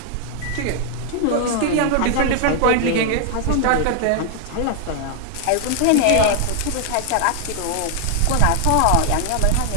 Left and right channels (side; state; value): both; different; correlation 0.00